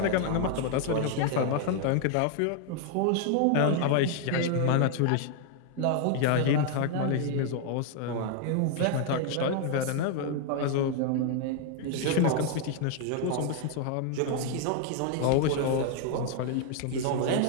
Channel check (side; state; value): both; different; correlation 0.00